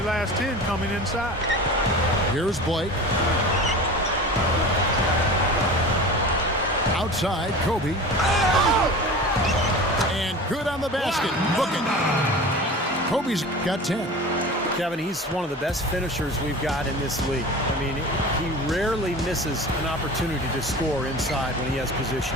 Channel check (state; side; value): normal; both; correlation 0.35